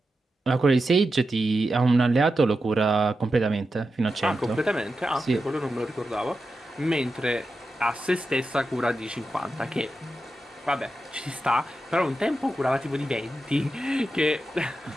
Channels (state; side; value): normal; both; correlation 0.90